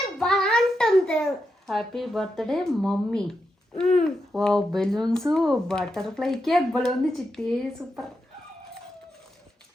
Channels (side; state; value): both; normal; correlation 0.85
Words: Happy birthday mummy. Wow, balloons, butterfly cake భలే ఉంది చిట్టి, సూపర్.